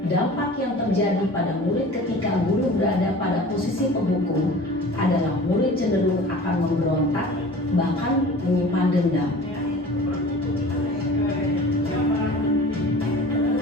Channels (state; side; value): normal; both; correlation 0.41